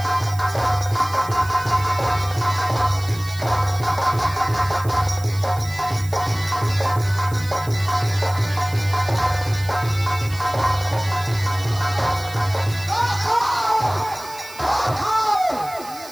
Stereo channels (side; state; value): right; noise; hiss, 18 dB below the sound